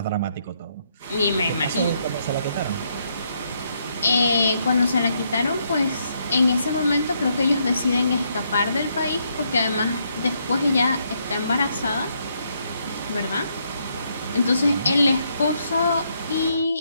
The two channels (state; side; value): inverted; both; correlation -0.75